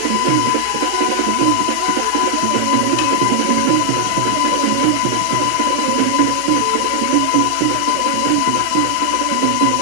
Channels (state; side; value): different; both; correlation 0.00